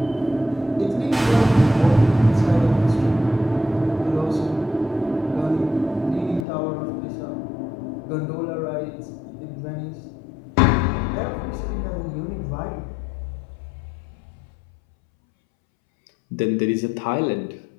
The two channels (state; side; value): drops out; right; at 6.5 s